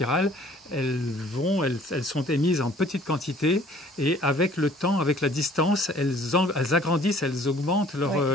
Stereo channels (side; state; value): both; normal; correlation 0.55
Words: elles sont émises en petite quantité et avec le temps, avec la distance, elles agrandissent, elles augmentent